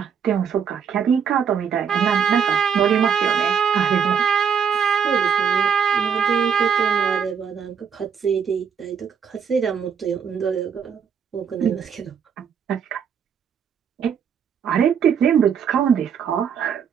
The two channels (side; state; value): left; quieter; 7.3 dB